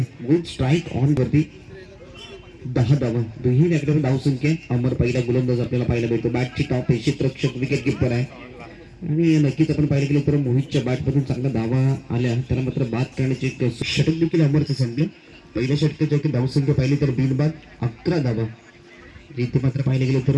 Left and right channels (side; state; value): both; identical; correlation 1.00